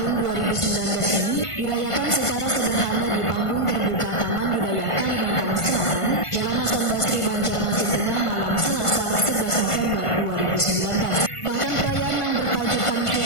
2019 ini dirayakan secara sederhana di panggung terbuka Taman Budaya Kalimantan Selatan, Jalan Hasan Basri, Banjarmasin Tengah, malam Selasa 11 November 2019. Bahkan perayaan yang bertajukan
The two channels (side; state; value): right; late; 1.5 ms